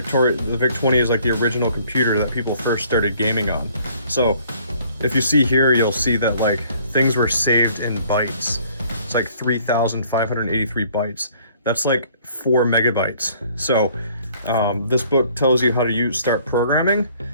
VIC-20 is like the original computer that people first started gaming on. So if you see here, you'll see that like things were saved in bytes. It's like 3,583 bytes. That's like 4 megabytes. So this book tells you how to start programming,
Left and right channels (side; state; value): both; inverted; correlation -0.59